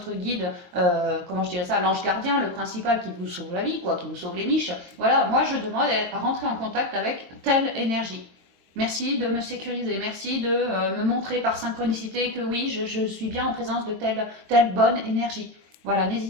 guide, comment je dirais ça, l'ange gardien, le principal qui vous sauve la vie, quoi, qui vous sauve les miches. Voilà, moi je demande à rentrer en contact avec telle énergie. Merci de me sécuriser, merci de me montrer par synchronicité que oui, je suis bien en présence de telle bonne énergie. Voilà,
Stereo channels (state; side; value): late; left; 23 ms